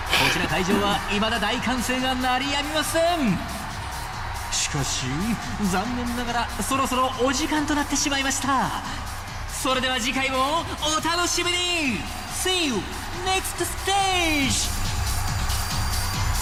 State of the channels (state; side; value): identical; both; correlation 1.00